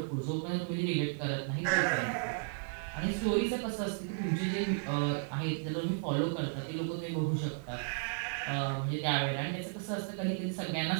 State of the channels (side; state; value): left; silent; digital silence